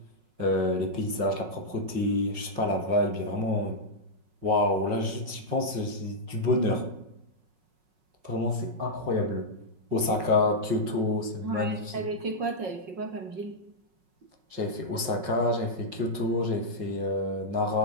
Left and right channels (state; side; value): late; left; 5.4 ms